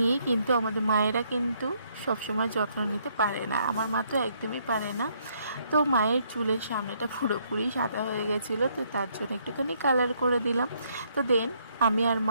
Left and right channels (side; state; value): both; inverted; correlation -0.70